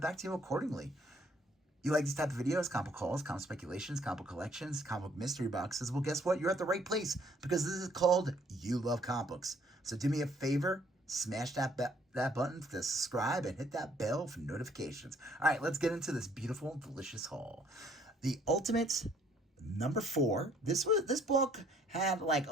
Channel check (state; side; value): normal; both; correlation 0.63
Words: back to you accordingly. You like these type of videos, comic hauls, comic speculations, comic collections, comic mystery boxes? Well, guess what? You're at the right place because this is called You Love Comics. So do me a favor, smash that button to subscribe and hit that bell for notifications. All right, let's get into this beautiful, delicious haul. The Ultimate number 4. This book had like